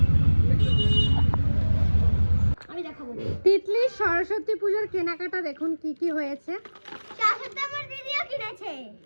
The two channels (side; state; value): both; inverted; correlation -1.00